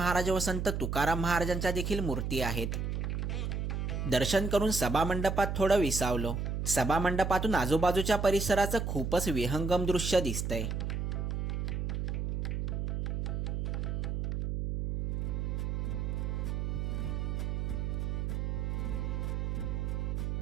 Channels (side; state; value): right; noise; hum, 1 dB below the sound